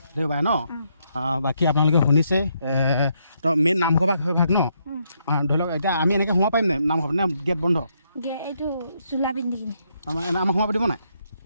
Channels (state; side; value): inverted; both; correlation -0.75